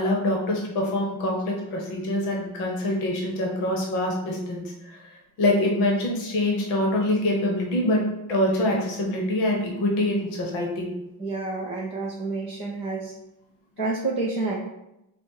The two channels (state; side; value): late; right; 5.6 ms